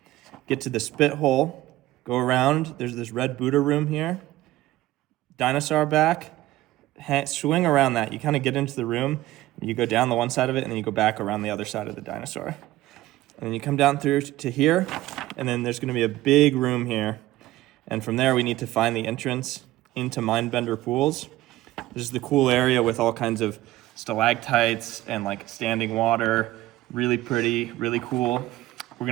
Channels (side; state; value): left; quieter; 16.3 dB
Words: get to the spit hole, go around. There's this red Buddha room here. Dinosaur back. Swing around that. You kind of get into the room, you go down the one side of it, and then you go back around the other side of the dinosaur. And then you come down through to here, and then there's going to be a big room here. And from there, we need to find the entrance into Mindbender Pools. This is the cool area with all kinds of stalactites and like standing water. Really pretty, really cool. We're